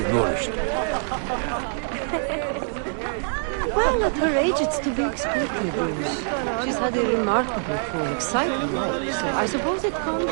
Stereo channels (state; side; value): silent; left; digital silence